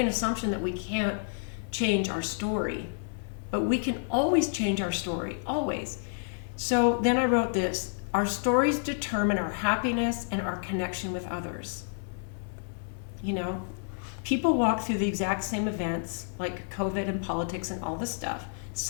assumption that we can't change our story, but we can always change our story, always. So then I wrote this. our stories determine our happiness and our connection with others. You know, people walk through the exact same events like COVID and politics and all this stuff.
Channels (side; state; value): right; silent; digital silence